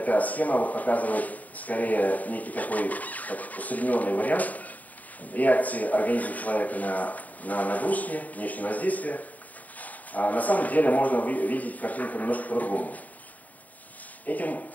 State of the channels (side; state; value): right; late; 0.075 ms